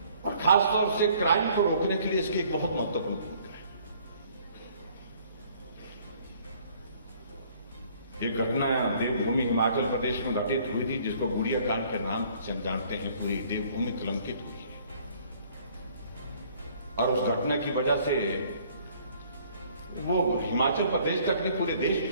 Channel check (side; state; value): both; inverted; correlation -0.59